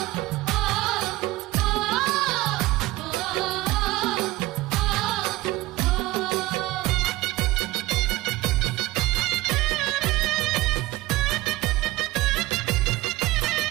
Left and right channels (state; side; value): quieter; left; 19.0 dB